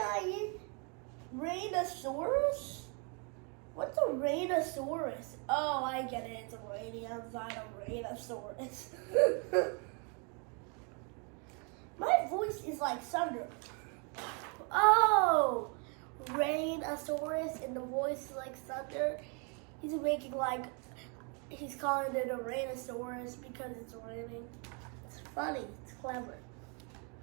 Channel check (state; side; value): quieter; left; 35.9 dB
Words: Rainosaurus? What's a Rainosaurus? Oh, I get it. It's a Rainosaurus. My voice is like thunder. Oh! Rainosaurus, and the voice is like thunder. He's calling it a Rainosaurus because it's raining. It's funny, it's clever.